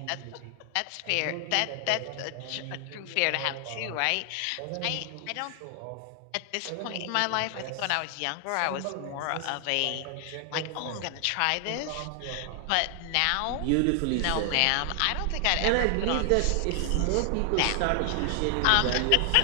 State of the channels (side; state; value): both; different; correlation 0.00